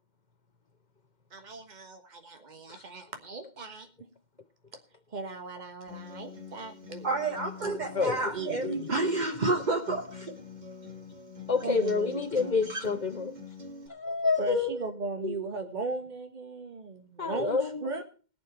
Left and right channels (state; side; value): late; left; 2.1 ms